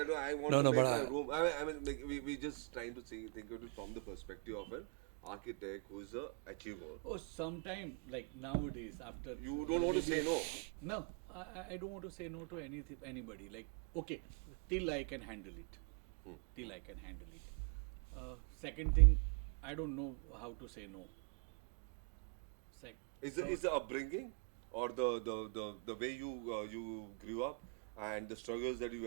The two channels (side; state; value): left; quieter; 38.7 dB